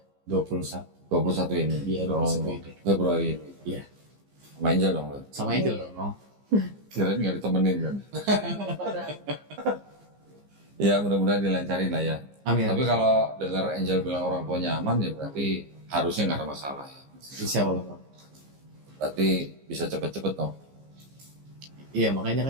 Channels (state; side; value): late; left; 15 ms